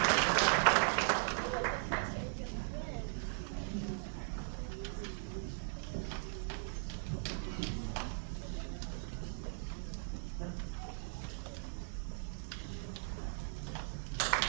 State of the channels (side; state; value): left; silent; digital silence